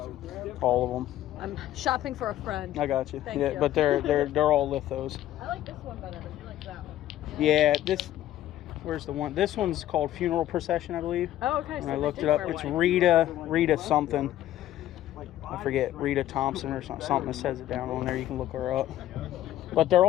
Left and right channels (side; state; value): right; quieter; 13.1 dB